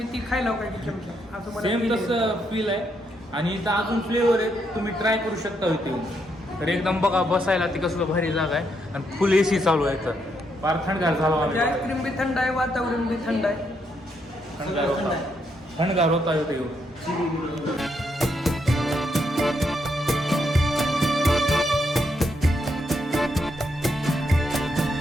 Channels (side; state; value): both; normal; correlation 0.77